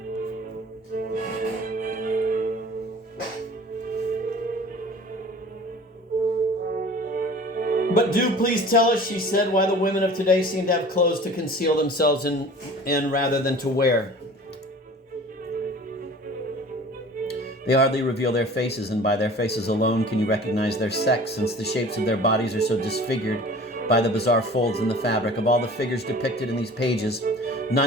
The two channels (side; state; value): both; normal; correlation 0.44